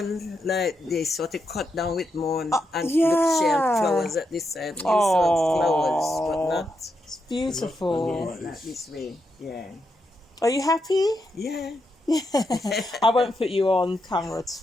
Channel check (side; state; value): both; normal; correlation 0.83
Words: like this, what they cut down with moon and yeah. look, she had flowers at this end. Oh, Flowers, but not, it's beautiful. yeah, not this way. Yeah. Are you happy? Yeah. I won't put you on camera at